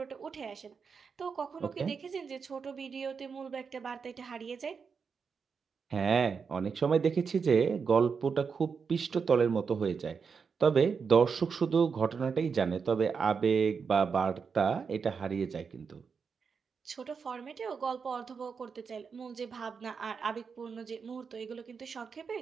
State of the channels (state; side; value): quieter; left; 5.8 dB